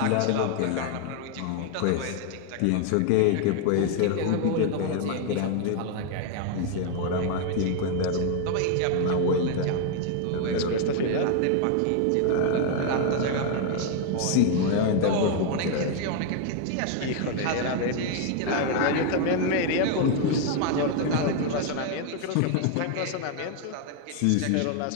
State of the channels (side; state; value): both; different; correlation 0.00